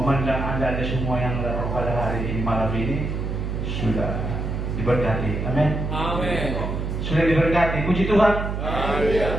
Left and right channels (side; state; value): right; noise; hum, 3 dB below the sound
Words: Anda semua yang datang pada hari ini malam ini sudah diberkati. Amin. Amin. Sudah diberkati. Puji Tuhan. Amin.